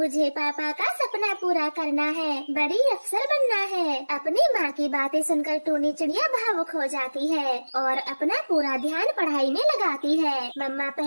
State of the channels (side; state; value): both; inverted; correlation -1.00